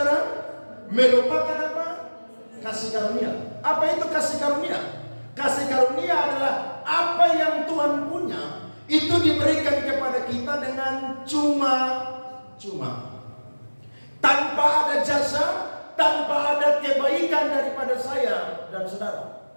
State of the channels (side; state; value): both; inverted; correlation -1.00